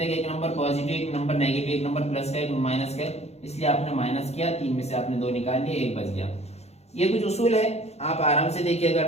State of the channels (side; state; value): right; late; 0.31 ms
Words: है कि एक नंबर पॉजिटिव एक नंबर नेगेटिव, एक नंबर प्लस का एक माइनस का, इसलिए आपने माइनस किया, 3 में से आपने 2 निकाल लिए, 1 बच गया। ये कुछ उसूल है, आप आराम से देखिए, अगर